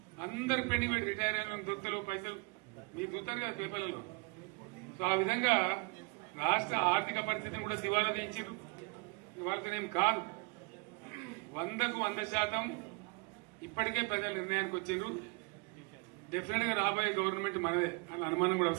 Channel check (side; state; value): left; quieter; 30.9 dB